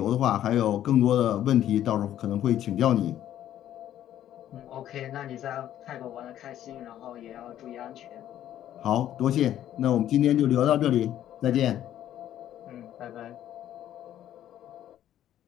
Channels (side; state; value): right; quieter; 11.7 dB